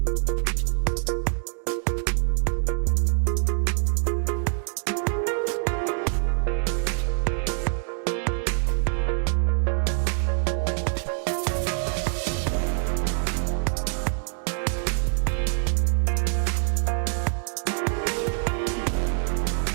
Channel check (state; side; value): silent; left; digital silence